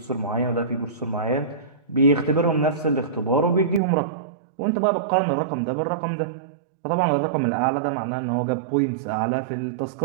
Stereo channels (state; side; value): drops out; left; at 3.8 s